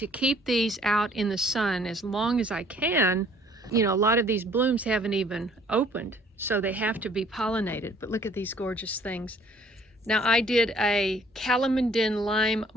keep these out in the sun as long as I can. You know, a lot of these blooms haven't even opened, so they have to be pollinated. But look at these gorgeous things. Now I did a calamondin lime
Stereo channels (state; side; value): normal; both; correlation 0.59